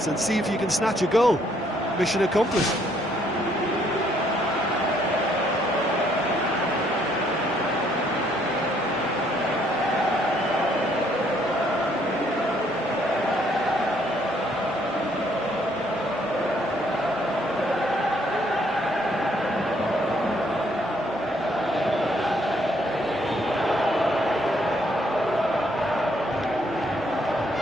and see if you can snatch a goal. Mission accomplished.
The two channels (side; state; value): both; normal; correlation 0.68